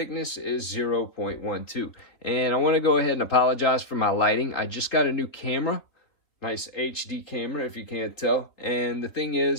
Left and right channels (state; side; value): late; right; 3.6 ms